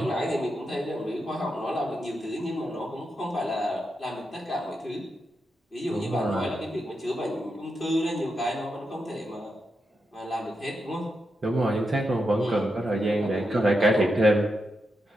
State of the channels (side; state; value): both; normal; correlation 0.86